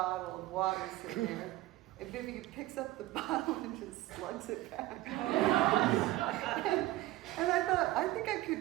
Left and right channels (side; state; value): left; quieter; 17.0 dB